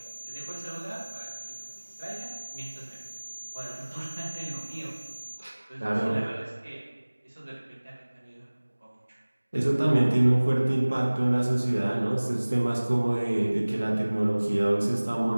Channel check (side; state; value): both; inverted; correlation -1.00